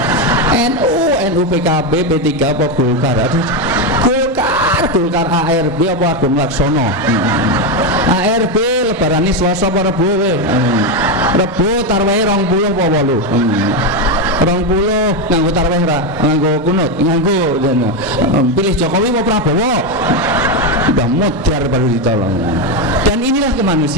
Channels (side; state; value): both; normal; correlation 0.09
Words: NU, PKB, P3 apa Golkar, aduh Golkar, ARB apa Agung Laksono, ARB lebaran ini Selasa apa Rebo, Rebo tarwehe 20 apa 8, 20 nganggo tarweh ra, nganggo kunut, nganggo pilih Jokowi apa Prabowo, udah modar baru ditolong. Dan inilah